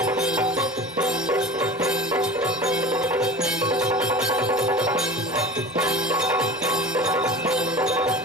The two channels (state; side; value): normal; both; correlation 0.36